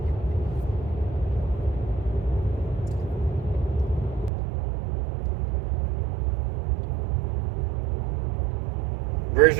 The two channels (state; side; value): drops out; left; at 4.3 s